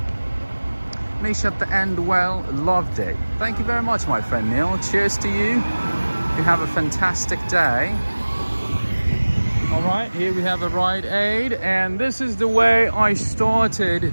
Niche at the end, well, loved it. Thank you very much, my friend Neil. Cheers to you. you have a fantastic day. All right, here we have a Rite Aid, and this is the way I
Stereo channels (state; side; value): inverted; both; correlation -1.00